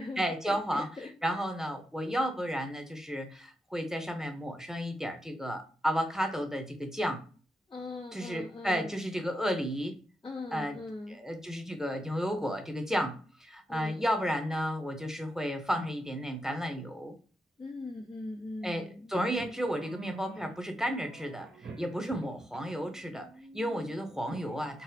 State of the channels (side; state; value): both; normal; correlation 0.85